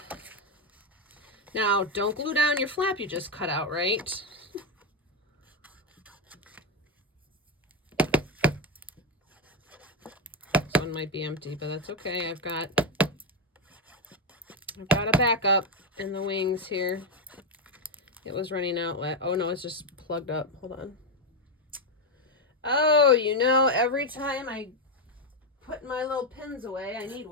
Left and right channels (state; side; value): normal; both; correlation 0.07